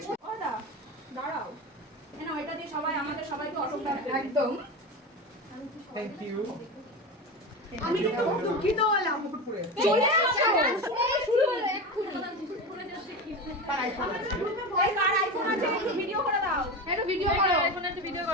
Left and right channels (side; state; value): both; normal; correlation 0.24